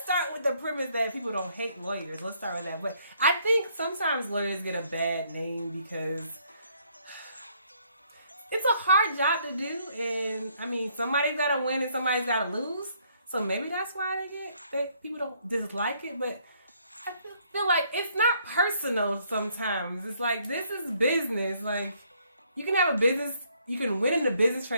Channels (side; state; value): both; inverted; correlation -0.67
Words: start with the premise that people don't hate lawyers. Let's start with that. But I think sometimes lawyers get a bad name because it's a hard job to do. And, I mean, somebody's got to win and somebody's got to lose. So maybe that's why people don't dislike it. But I feel like it's not personal sometimes. It's like, this is business. Like, you can have a business, you can win in a business